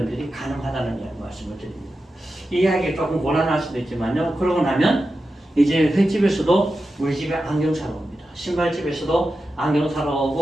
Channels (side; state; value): both; normal; correlation 0.91